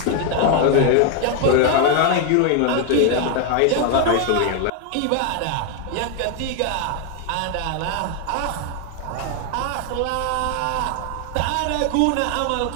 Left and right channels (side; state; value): both; different; correlation 0.01